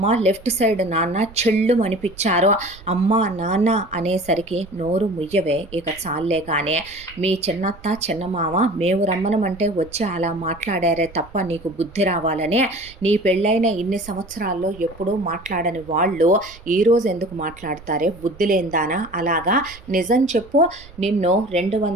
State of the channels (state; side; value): noise; right; rumble, 21 dB below the sound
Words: లెఫ్ట్ సైడ్ నాన్న చెళ్ళుమనిపిచ్చారు. అమ్మ, నాన్న అనేసరికి నోరు ముయ్యవే, ఇక చాల్లే కానీ మీ చిన్నత్త, చిన్నమామ మేము రమ్మనమంటే వచ్చి అలా మాట్లాడారే తప్ప నీకు బుద్ధి రావాలనే. నీ పెళ్ళైన ఇన్ని సంవత్సరాలు ఎప్పుడూ మాట్లాడని వాళ్ళు ఈరోజు ఎందుకు మాట్లాడతారే బుద్ధి లేందానా? అలాగా నిజం చెప్పు, నిన్ను